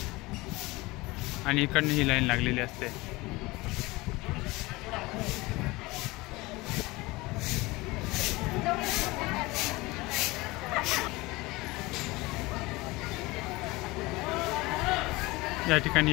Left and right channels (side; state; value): right; quieter; 21.9 dB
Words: आणि इकडनं ही लाईन लागलेली असते। या